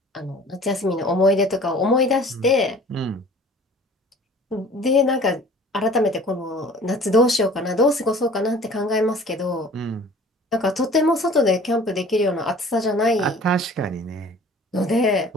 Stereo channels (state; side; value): normal; both; correlation 0.48